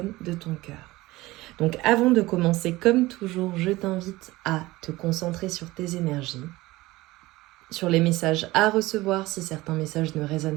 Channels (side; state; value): left; quieter; 19.2 dB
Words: de ton cœur. Donc avant de commencer, comme toujours, je t'invite à te concentrer sur tes énergies, sur les messages à recevoir si certains messages ne